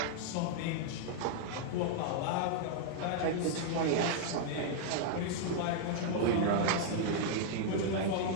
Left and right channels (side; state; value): both; different; correlation -0.01